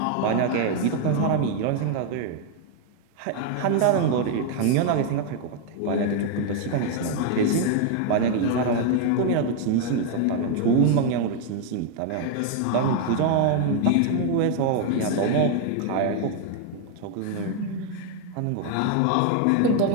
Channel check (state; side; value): different; both; correlation 0.01